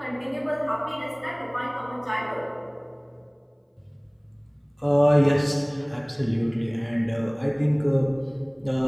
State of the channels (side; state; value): both; identical; correlation 1.00